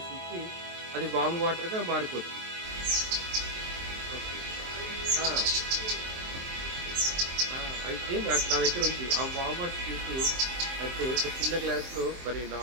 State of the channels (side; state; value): left; late; 23 ms